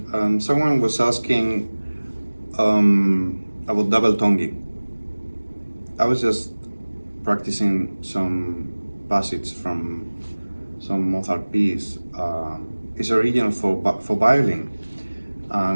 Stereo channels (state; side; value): inverted; both; correlation -1.00